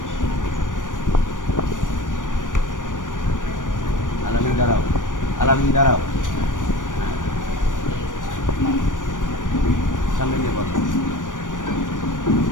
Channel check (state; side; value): late; right; 0.88 ms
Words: আলামিন দাঁড়াও সামনে নিয়ে বলো,